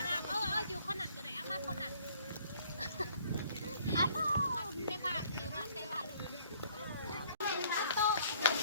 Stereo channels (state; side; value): inverted; both; correlation -0.60